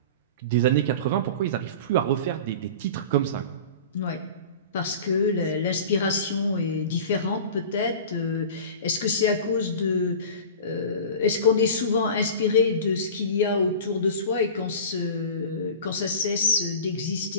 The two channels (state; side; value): inverted; both; correlation -0.35